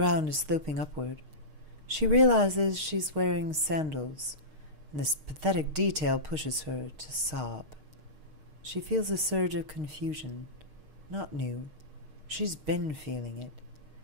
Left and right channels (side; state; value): left; late; 6.5 ms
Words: is sloping upward. She realizes she's wearing sandals, and this pathetic detail pushes her to sob. She feels a surge of confusion. Not new. She's been feeling it.